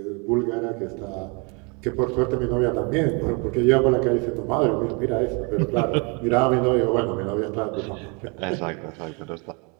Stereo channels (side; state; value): left; quieter; 32.2 dB